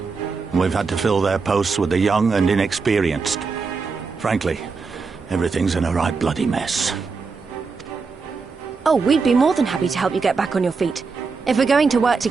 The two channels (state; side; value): quieter; left; 4.7 dB